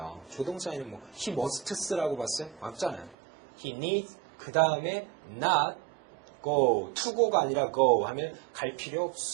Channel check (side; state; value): left; drops out; at 3.2 s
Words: 조동사에는 뭐 he musts라고 봤어요? 맞잖아요. he needs 그 다음에 not go, to go가 아니라 go 하면 갈 필요